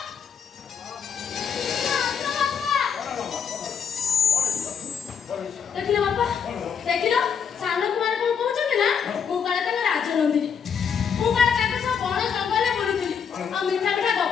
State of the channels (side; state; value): right; quieter; 7.1 dB